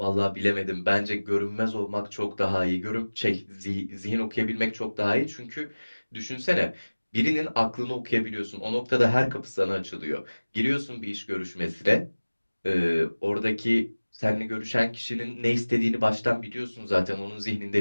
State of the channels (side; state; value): both; inverted; correlation -1.00